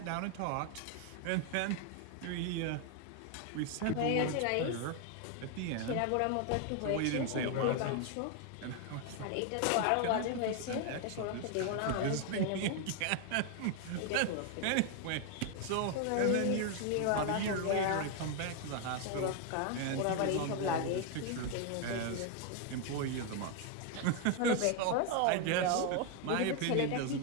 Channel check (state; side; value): different; both; correlation 0.01